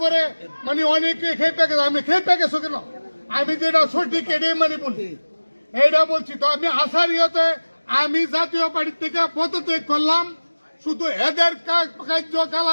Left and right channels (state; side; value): inverted; both; correlation -1.00